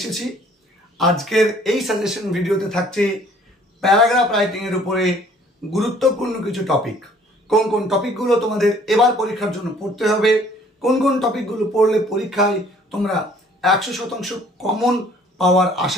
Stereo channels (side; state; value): both; normal; correlation 0.57